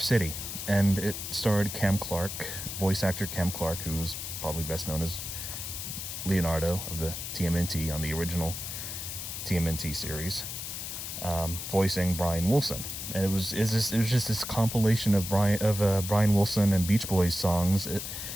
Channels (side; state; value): left; noise; hiss, 6 dB below the sound